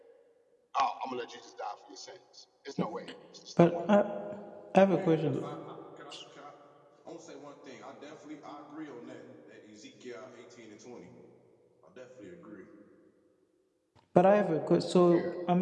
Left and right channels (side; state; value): both; identical; correlation 1.00